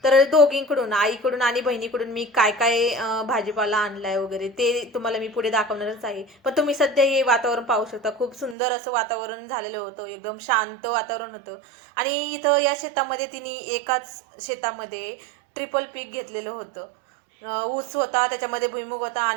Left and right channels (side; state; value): left; drops out; at 8.6 s